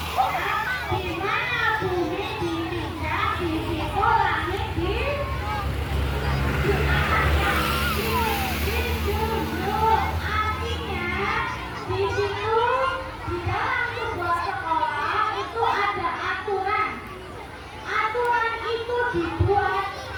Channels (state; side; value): identical; both; correlation 1.00